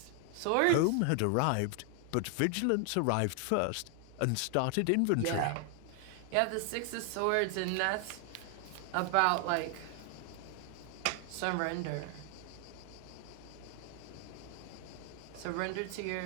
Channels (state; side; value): different; both; correlation 0.00